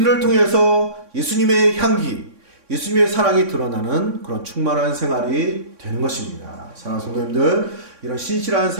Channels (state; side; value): late; left; 3.6 ms